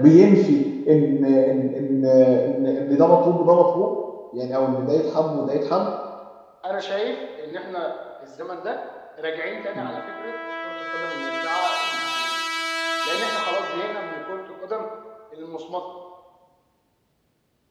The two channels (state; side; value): identical; both; correlation 1.00